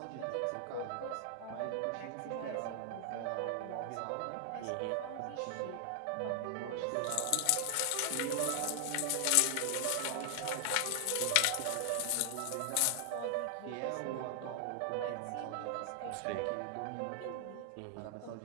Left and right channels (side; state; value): both; different; correlation 0.00